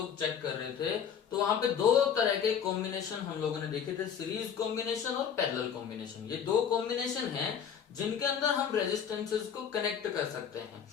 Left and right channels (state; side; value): quieter; right; 7.9 dB